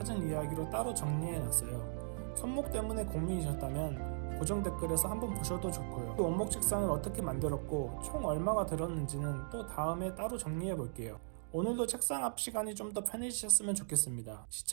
이야기로 따로 정리해놨어요. 손목 때문에 고민이셨다면 고정 댓글에서 한번 보셔도 좋고요. 그 원목 책상을 어떻게 만들었고 총 얼마가 들었는지는 또 다음에 따로 정리해볼게요. 오늘도 책상 앞 시간이 좀 더 편해지셨으면 좋겠습니다.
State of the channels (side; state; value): left; silent; digital silence